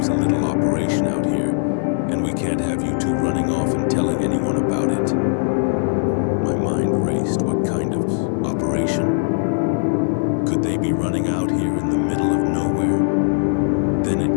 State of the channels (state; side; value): silent; right; digital silence